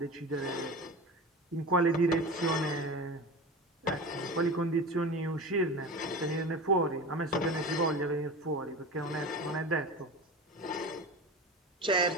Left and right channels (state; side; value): normal; both; correlation 0.30